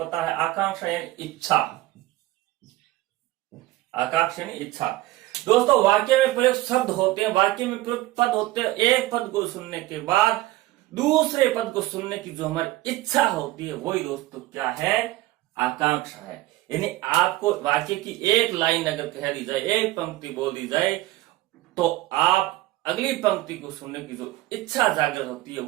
है, आकांक्षा यानी इच्छा। आकांक्षा यानी इच्छा। दोस्तों वाक्य में प्रयुक्त शब्द होते हैं, वाक्य में प्रयुक्त पद होते हैं, एक पद को सुनने के बाद दूसरे पद को सुनने की जो हमारी इच्छा होती है वही दोस्तों क्या है, आकांक्षा है। यानी आपको वाक्य की एक लाइन अगर कह दी जाए, एक पंक्ति बोल दी जाए, तो आप अगली पंक्ति को सुनने की जो इच्छा जागृत होती है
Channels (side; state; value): left; quieter; 17.3 dB